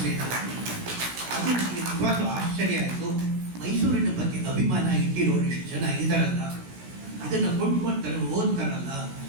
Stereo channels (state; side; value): late; left; 16 ms